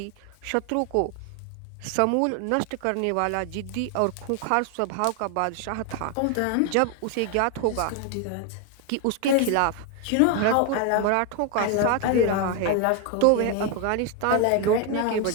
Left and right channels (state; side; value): different; both; correlation 0.01